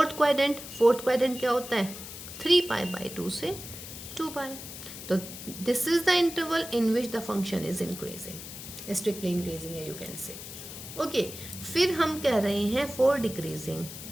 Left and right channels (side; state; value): left; noise; hiss, 11 dB below the sound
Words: quadrant. Fourth quadrant क्या होता है, 3π/2 से 2π। तो this is the interval in which the function is increasing, strictly increasing है यू कैन से। ओके, फिर हम कह रहे हैं फॉर डिक्रीजिंग।